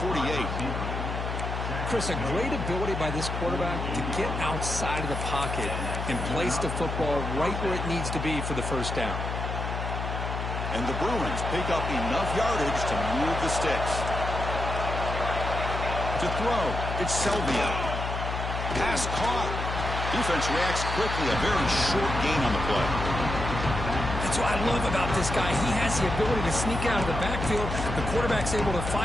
48. Chris, a great ability by this quarterback to get outside of the pocket and place the football right where it needs to be for the 1st down. And the Bruins pick up enough yardage to move the sticks. To throw, it's Selvia. Pass caught. Defense reacts quickly. A very short gain on the play. That's what I love about this guy. He has the ability to sneak out of the backfield. The quarterback's able to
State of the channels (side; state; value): left; noise; hum, 4 dB below the sound